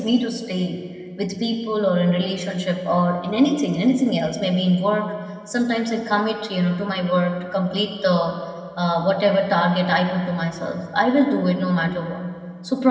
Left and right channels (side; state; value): both; identical; correlation 1.00